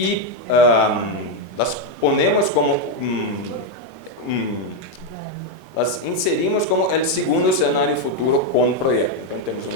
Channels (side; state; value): both; normal; correlation 0.03